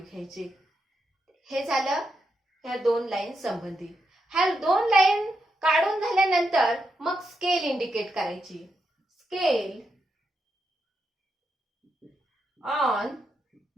घ्यायचे. हे झालं ह्या 2 लाईन संबंधित. ह्या 2 लाईन काढून झाल्यानंतर मग स्केल इंडिकेट करायची. स्केल ऑन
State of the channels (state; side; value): normal; both; correlation 0.84